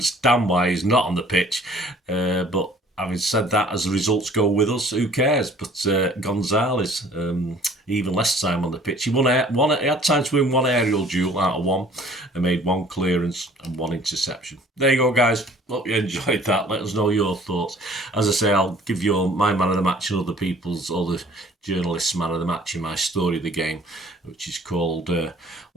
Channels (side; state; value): both; normal; correlation 0.53